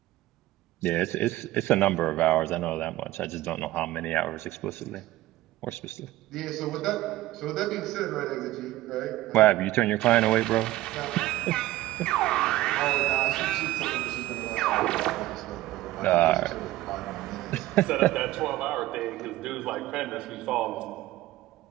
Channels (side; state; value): left; quieter; 16.4 dB